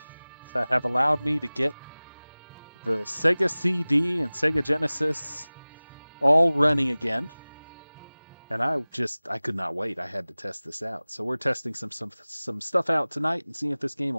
that have allowed me to get the Sega CD and Sega Genesis all running again. And I could not wait. I had to test this out. So we're testing some stuff out tonight and seeing if this game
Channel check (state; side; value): inverted; both; correlation -0.99